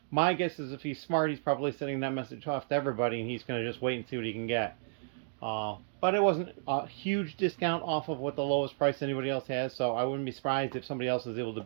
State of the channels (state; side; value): silent; left; digital silence